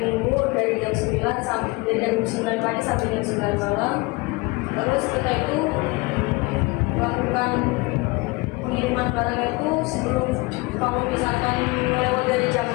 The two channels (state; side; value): quieter; right; 24.8 dB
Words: Minggu dari jam 9 pagi sampai jam 9 malam. Terus kita itu melakukan pengiriman barang itu sebelum, kalau misalkan lewat dari jam